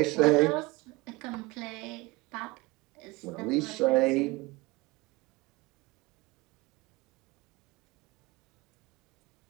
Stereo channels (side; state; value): left; quieter; 22.2 dB